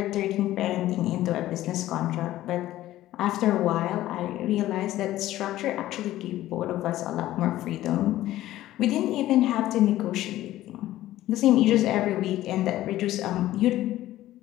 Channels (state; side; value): quieter; right; 14.7 dB